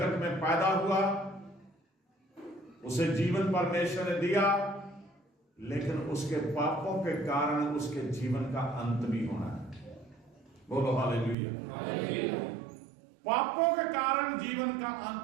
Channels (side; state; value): left; drops out; at 11.4 s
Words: में पैदा हुआ, उसे जीवन परमेश्वर ने दिया, लेकिन उसके पापों के कारण उसके जीवन का अंत भी होना है। बोलो हालेलुया। पापों के कारण जीवन का